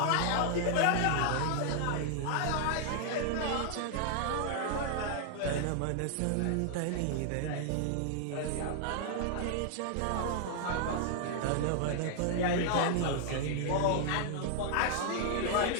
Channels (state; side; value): different; both; correlation 0.00